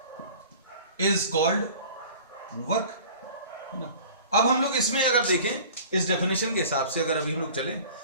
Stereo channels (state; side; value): inverted; both; correlation -0.45